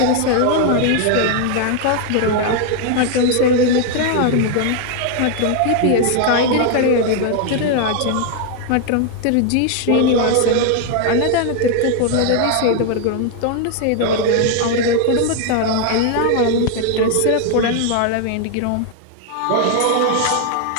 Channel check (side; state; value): both; different; correlation 0.00